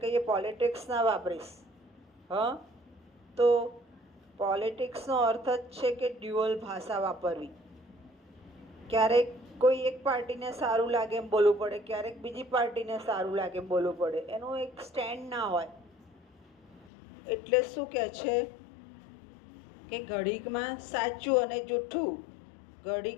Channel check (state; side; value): drops out; right; at 16.9 s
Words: કહીએ પોલિટિક્સ ના વાપરીશ. તો પોલિટિક્સનો અર્થ જ છે કે ડ્યુઅલ ભાષા વાપરવી. ક્યારેક કોઈ એક પાર્ટીને સારું લાગે એમ બોલવું પડે, ક્યારેક બીજી પાર્ટીને સારું લાગે એમ બોલવું પડે. એનું એક સ્ટેન્ડ ના હોય. એટલે શું કહે છે કે ઘડીકમાં સાચું અને જૂઠું,